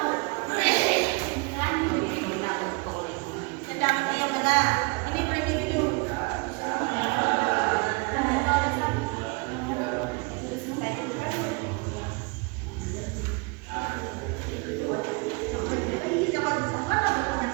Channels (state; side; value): quieter; left; 30.0 dB